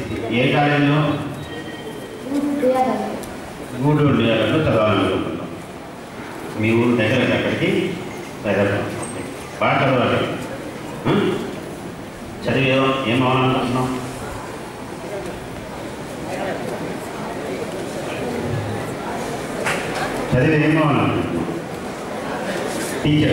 ఏ కాలేజీలో? గూడూరు డిఆర్లో చదవాలనుకుంటున్నాం. మీ ఊరు దగ్గర అక్కడికి హైదరాబాద్ బాగా చదవాలి. చదివి ఏం అవ్వాలనుకుంటున్నాం? చదివి ఏం అవ్వాలనుకుంటున్నాం?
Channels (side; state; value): both; identical; correlation 1.00